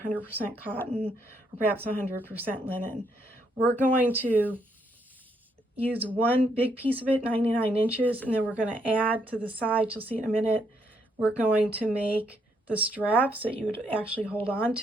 100% cotton or perhaps 100% linen. We're going to use one big piece of it, 99 inches, and then we're going to add to the sides, you'll see in a minute, we're going to make the straps that you would actually hold on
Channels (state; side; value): normal; both; correlation 0.74